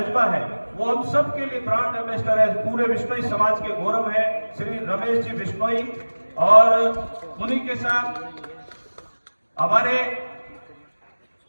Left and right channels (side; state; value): both; inverted; correlation -1.00